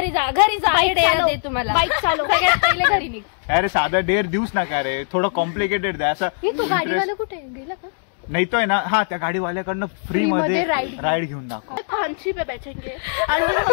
जा बाईक तुम्हाला. बाईक चालव. पहिले घरी निघ. अरे साधा डेअर देऊच नका रे. थोडं कॉम्प्लिकेटेड द्या असं. तो गाडीवाला कुठे गेला का. नाही तो आहे ना. हा त्या गाडीवाल्याकडनं फ्री मध्ये राईड घेऊन दाखव. फांसी पे बैठेंगे और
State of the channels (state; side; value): silent; right; digital silence